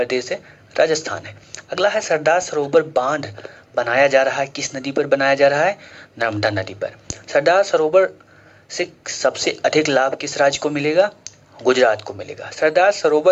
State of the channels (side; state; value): both; identical; correlation 1.00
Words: है, राजस्थान है। अगला है सरदार सरोवर बांध बनाया जा रहा है, किस नदी पर बनाया जा रहा है? नर्मदा नदी पर। सरदार सरोवर से सबसे अधिक लाभ किस राज्य को मिलेगा? गुजरात को मिलेगा। सरदार